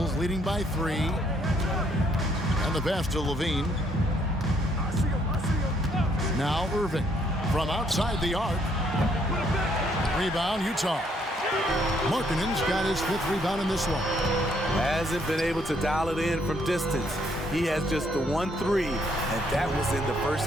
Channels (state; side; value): normal; both; correlation 0.69